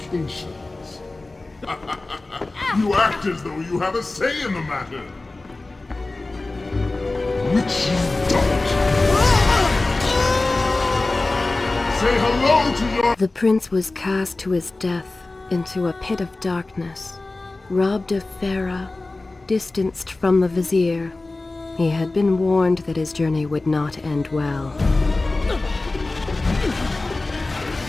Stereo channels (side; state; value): right; quieter; 3.2 dB